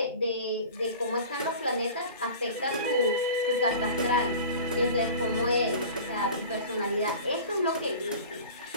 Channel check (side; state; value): both; inverted; correlation -0.39